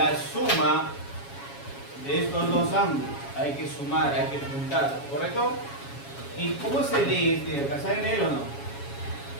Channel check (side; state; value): right; late; 7.2 ms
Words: suma de estos dos ángulos, hay que sumar, hay que juntar, ¿correcto? ¿Y cómo se lee este de acá? ¿Saben leer o no?